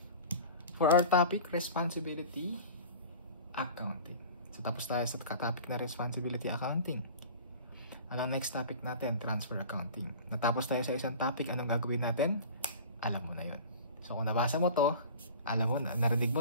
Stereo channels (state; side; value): inverted; both; correlation -0.39